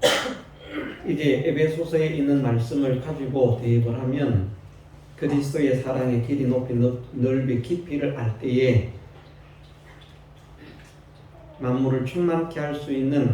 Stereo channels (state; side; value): identical; both; correlation 1.00